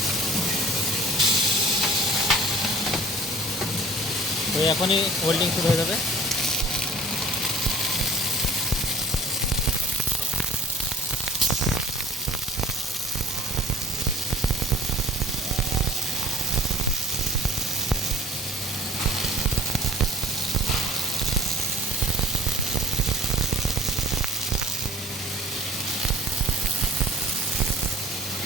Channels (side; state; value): both; normal; correlation 0.46